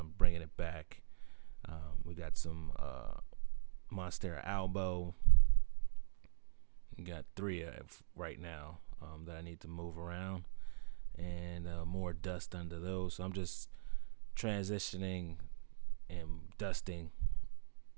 bringing it back. We got some Monstera albo. We got 3 right now that I need to move around, and more dust under those. So I'm just transitioning and dusting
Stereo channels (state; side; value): silent; left; digital silence